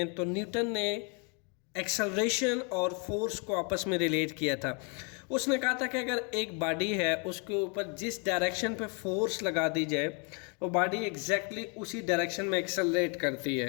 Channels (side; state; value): right; quieter; 35.6 dB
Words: तो न्यूटन ने एक्सेलरेशन और फोर्स को आपस में रिलेट किया था। उसने कहा था कि अगर एक बॉडी है उसके ऊपर जिस डायरेक्शन पे फोर्स लगा दी जाए वो बॉडी एग्जैक्टली उसी डायरेक्शन में एक्सेलरेट करती